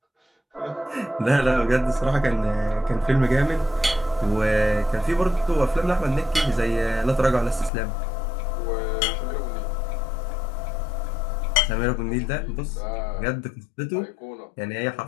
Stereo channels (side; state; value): right; drops out; at 7.7 s